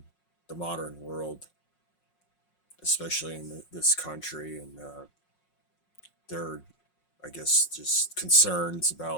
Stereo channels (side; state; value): right; late; 5.5 ms